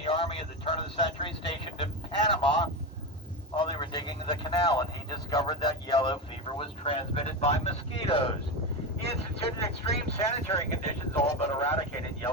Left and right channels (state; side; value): normal; both; correlation 0.17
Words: Army at the turn of the century, stationed in Panama while they were digging the canal, and he discovered that yellow fever was transmitted by mosquitoes. He instituted extreme sanitary conditions, all but eradicated